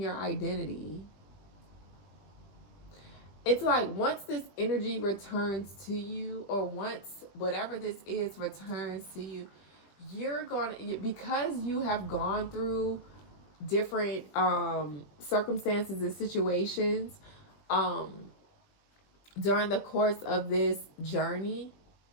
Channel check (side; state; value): right; late; 20 ms